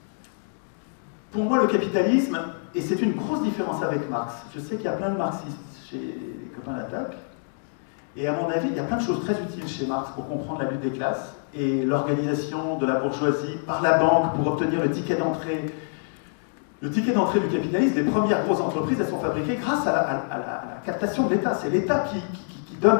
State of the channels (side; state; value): right; silent; digital silence